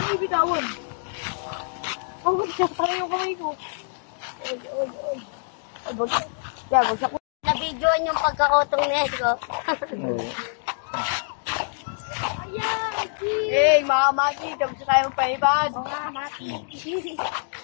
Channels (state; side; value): silent; right; digital silence